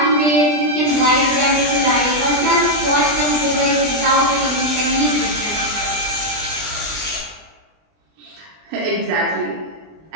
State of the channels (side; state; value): left; late; 20 ms